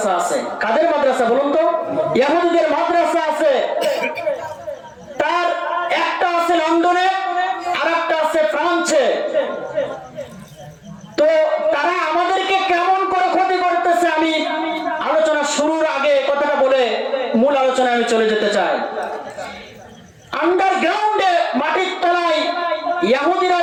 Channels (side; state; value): both; identical; correlation 1.00